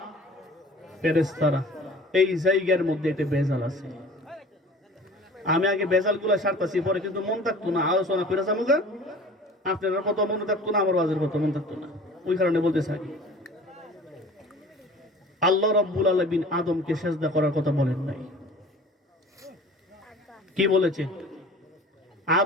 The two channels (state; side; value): normal; both; correlation 0.44